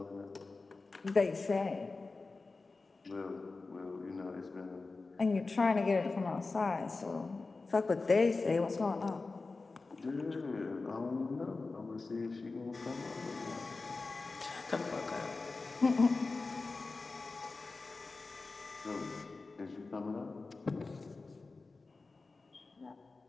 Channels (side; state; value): right; quieter; 3.8 dB